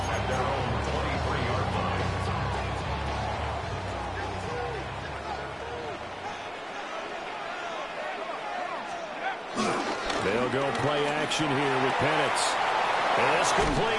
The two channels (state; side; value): identical; both; correlation 1.00